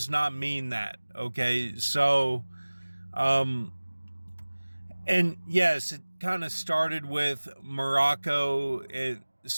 not mean that. Okay, so and yes, it kind of started with Morocco.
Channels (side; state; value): both; inverted; correlation -1.00